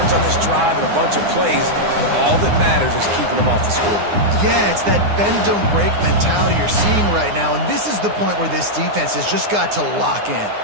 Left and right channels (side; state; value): left; late; 9.7 ms